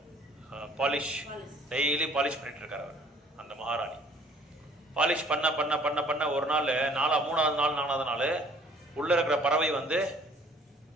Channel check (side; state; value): both; normal; correlation 0.56